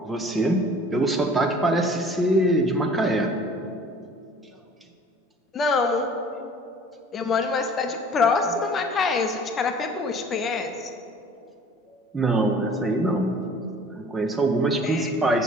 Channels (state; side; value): normal; both; correlation 0.49